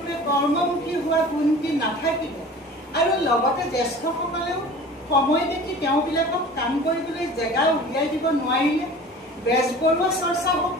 কৰ্মমুখী হোৱা গুণটি নাথাকিলে আৰু লগতে জ্যেষ্ঠসকলেও সময় দেখি তেওঁবিলাকক কাম কৰিবলৈ জেগা উলিয়াই দিব নোৱাৰিলে বেজবৰুৱা চৰ্চা হওক,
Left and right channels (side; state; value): both; normal; correlation 0.41